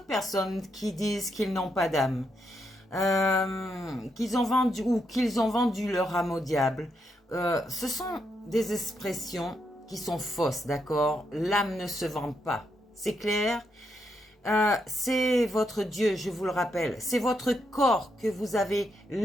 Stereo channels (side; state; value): both; normal; correlation 0.80